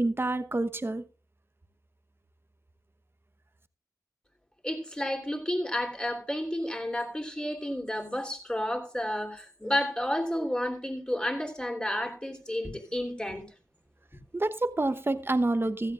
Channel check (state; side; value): normal; both; correlation 0.92